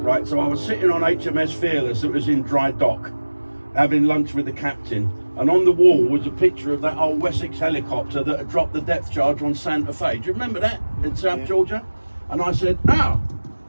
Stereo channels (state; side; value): inverted; both; correlation -1.00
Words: right? So I was sitting on HMS Fearless that was in dry dock, having lunch with the captain, and on the wall was a picture of that old Wessex helicopter that had dropped the depth charge on Santa Fe. Do you remember that in South Georgia? And I said,